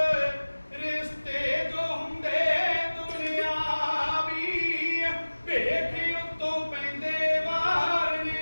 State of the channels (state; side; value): inverted; both; correlation -1.00